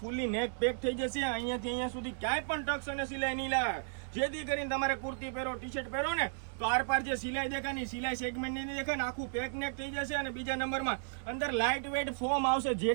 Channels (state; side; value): silent; left; digital silence